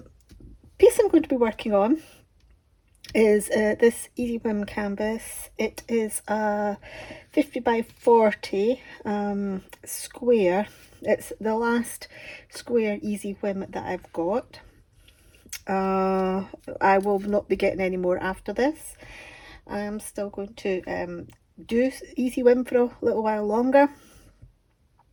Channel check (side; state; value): both; identical; correlation 1.00